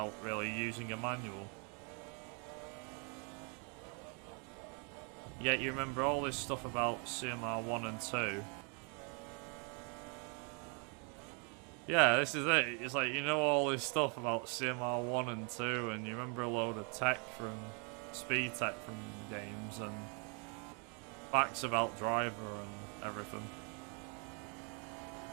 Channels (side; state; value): left; quieter; 36.4 dB